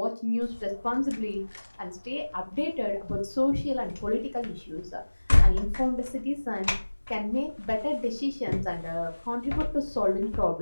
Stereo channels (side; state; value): both; inverted; correlation -1.00